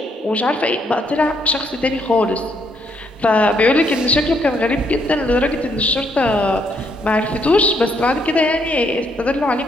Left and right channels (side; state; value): both; normal; correlation 0.72